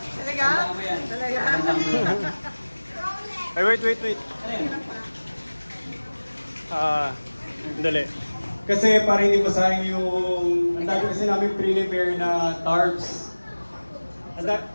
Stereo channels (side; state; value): both; inverted; correlation -1.00